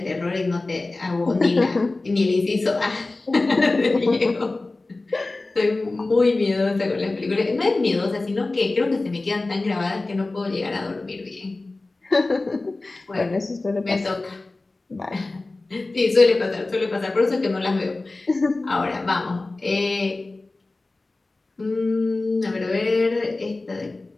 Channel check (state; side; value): quieter; right; 3.2 dB